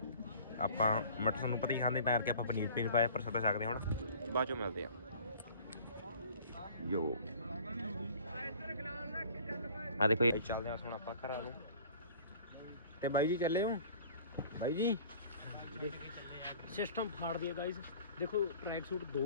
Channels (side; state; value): both; inverted; correlation -0.49